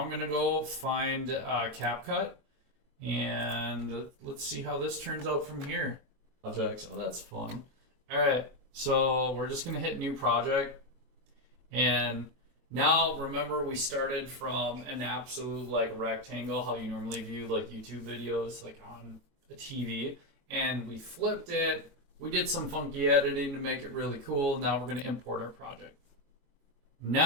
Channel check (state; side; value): late; left; 22 ms